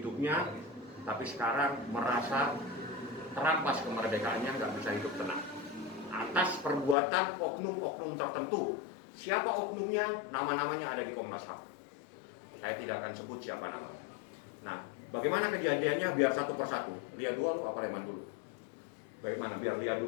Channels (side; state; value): right; drops out; at 7.0 s